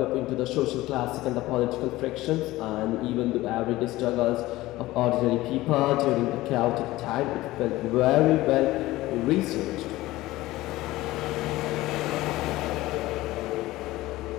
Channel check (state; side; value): quieter; right; 17.7 dB